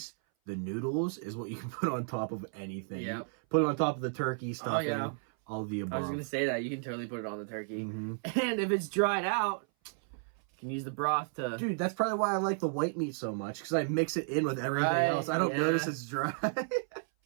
the noodles is what you can put on top of anything. Yeah, put it on top of the turkey stuffing. Oh yeah. All the above. I was gonna say that you can totally put it on the turkey, and if it's dried out. Can use the broth to... Dude, that's probably why I like the white meat so much, because I mix it in with everything else. I don't notice it's dry.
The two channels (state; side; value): silent; left; 56 dB below the other